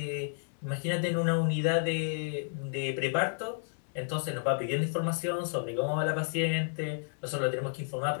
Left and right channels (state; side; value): silent; right; digital silence